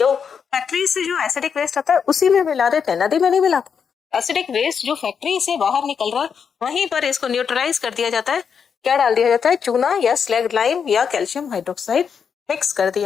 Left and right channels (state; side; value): quieter; right; 6.7 dB